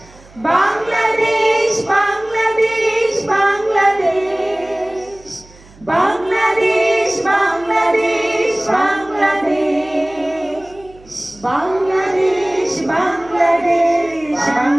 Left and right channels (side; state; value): right; noise; hum, 25 dB below the sound